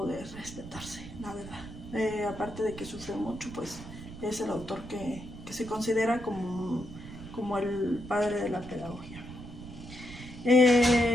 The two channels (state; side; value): noise; right; rumble, 13 dB below the sound